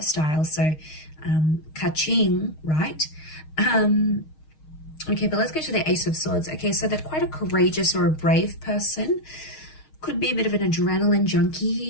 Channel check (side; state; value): right; late; 6.4 ms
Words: so ka-ching, right? Okay, but let's go to the Ace of Swords. Okay, so they're quite a courageous or a brave person. Could be a bit of an adrenaline junkie